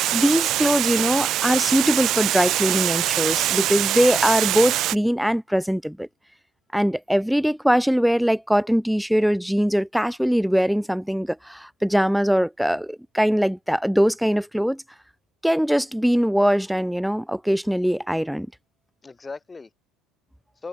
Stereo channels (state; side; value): normal; both; correlation 0.92